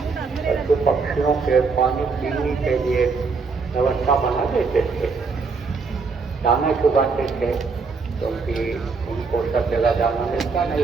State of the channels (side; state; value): left; quieter; 4.7 dB